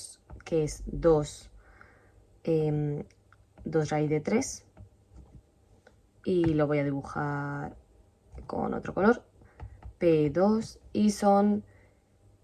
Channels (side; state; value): both; identical; correlation 1.00